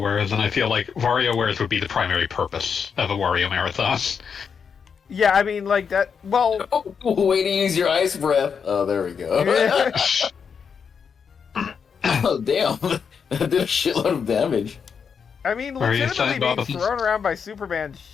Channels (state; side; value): quieter; right; 6.5 dB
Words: and I feel like WarioWares would be the primary purpose of a Wario marathon. Yeah, I mean, like that. Well, Way to use your ice breath. Oh, there we go. Oh, damn. That did a shitload of damage. I mean, Are you legitimately saying, being Bob? thrown around by Superman